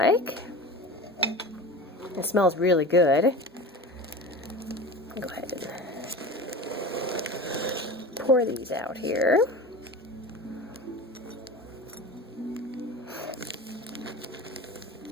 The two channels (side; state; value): both; normal; correlation 0.33